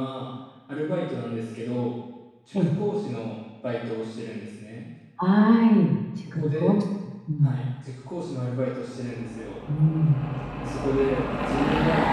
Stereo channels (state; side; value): identical; both; correlation 1.00